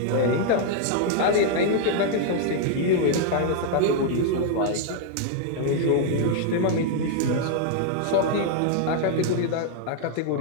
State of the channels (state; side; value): different; both; correlation 0.00